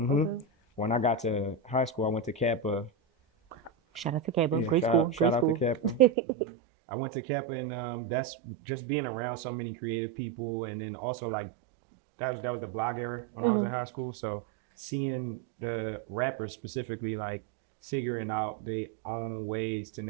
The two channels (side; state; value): left; drops out; at 6.1 s